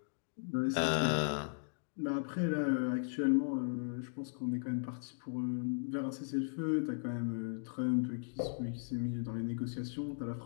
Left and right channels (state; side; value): silent; right; digital silence